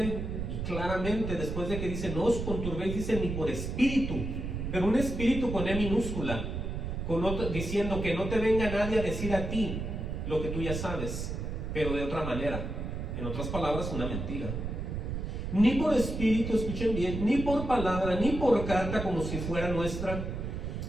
y claramente, después de que dice, no os conturbéis, dice, ni por espíritu, pero un espíritu con E minúscula. diciendo que no te venga nadie a decir a ti lo que tú ya sabes, pero de otra manera. En otras palabras, una mentira. Ni por espíritu, escuchen bien, ni por palabra, ni por carta como si fuera nuestra,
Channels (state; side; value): noise; right; rumble, 4 dB below the sound